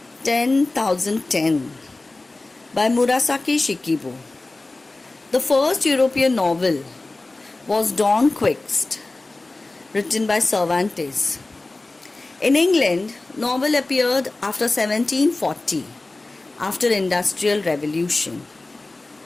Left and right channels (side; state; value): right; quieter; 3.1 dB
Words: 10,010 by Murasaki Shikibu. The first European novel was Don Quixote, written by Cervantes. In England, novel appeared after 1740, after Industrial Revolution.